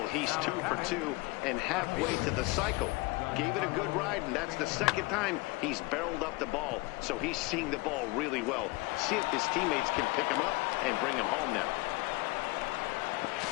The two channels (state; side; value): quieter; right; 23.5 dB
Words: he's 2 for 2 and halfway to the cycle. Gave it a good ride, and that's the second time he's barreled up the ball. So he's seeing the ball really well. See if his teammates can pick him up and bring him home now.